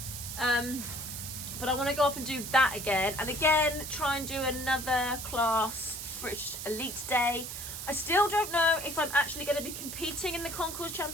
But I want to go up and do that again, and again try and do another class British Elite Day. I still don't know if I'm actually going to be competing in the Concourse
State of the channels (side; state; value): right; noise; hiss, 7 dB below the sound